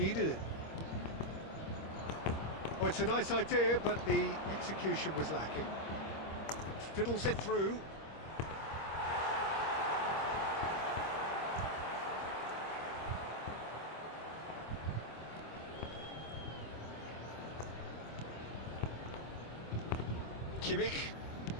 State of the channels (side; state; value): right; late; 25 ms